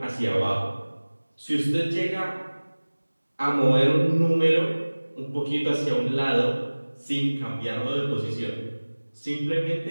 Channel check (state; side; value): inverted; both; correlation -1.00